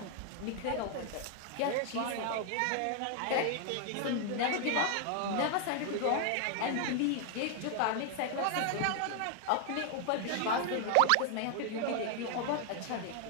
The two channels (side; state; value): both; different; correlation 0.00